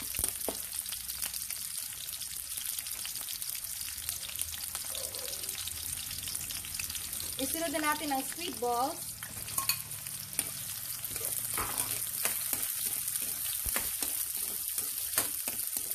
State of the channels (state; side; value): identical; both; correlation 1.00